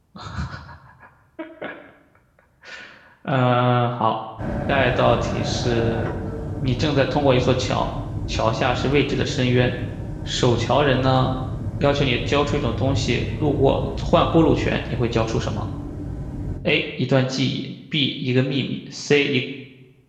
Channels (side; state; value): both; identical; correlation 1.00